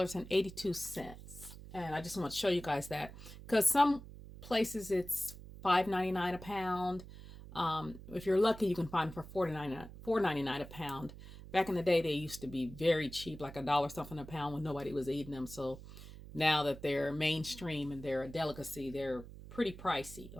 And I just want to show you guys that because some places it's $5.99 a pound. If you're lucky, you can find them for $4.99 a pound. Back in the day, they used to be very cheap, like $1 something a pound when nobody was eating them. So now that they're mainstream and they're a delicacy, they're pretty pricey.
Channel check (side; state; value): right; noise; hum, 15 dB below the sound